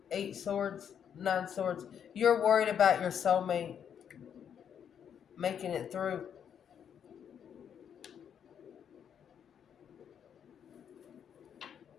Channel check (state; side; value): quieter; right; 8.4 dB